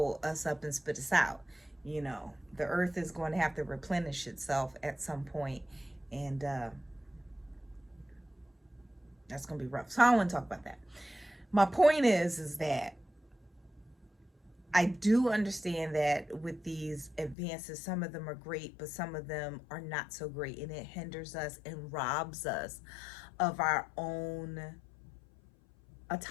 us up and spit us out. The earth is going to have to replenish itself at some point, and that's going to be rough. So I don't want to talk about that. My point is that I do understand that with these advances, some of them are great, but some of them are not so great, and it hinders us and robs us of our own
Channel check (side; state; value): right; drops out; at 17.4 s